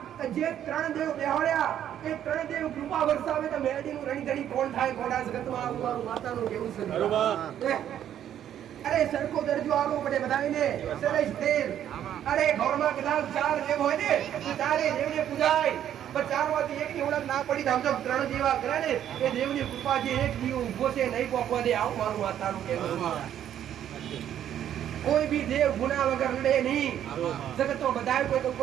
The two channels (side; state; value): left; quieter; 10.5 dB